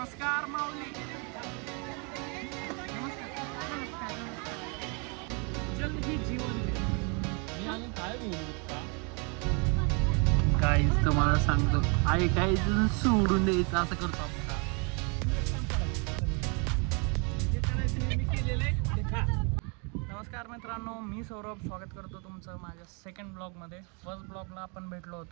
माऊली. जल ही जीवन आहे. काहीच तुम्हाला सांगतो आई काहीच सोडून द्यायचं असं करतो आपण. नमस्कार मित्रांनो, मी सौरभ स्वागत करतो तुमचं माझ्या सेकंड ब्लॉगमध्ये. फर्स्ट ब्लॉगला आपण भेटलो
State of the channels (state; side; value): quieter; left; 34.5 dB